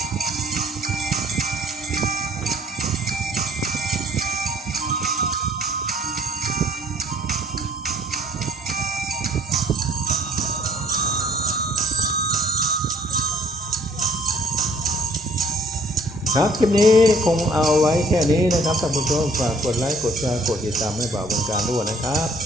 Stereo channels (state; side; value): normal; both; correlation 0.59